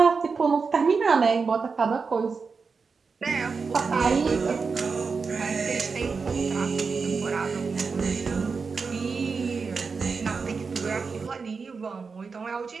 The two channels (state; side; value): quieter; left; 4.9 dB